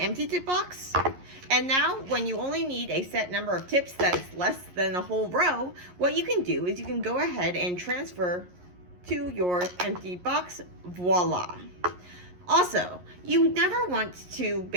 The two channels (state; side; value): late; left; 11 ms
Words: tip box. And now, when you only need a set number of tips that's less than a whole row, what you can do is you can go ahead and transfer to your empty box. Voila. Also, you never want to